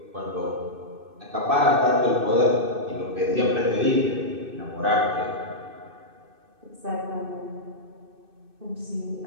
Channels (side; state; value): left; late; 2.6 ms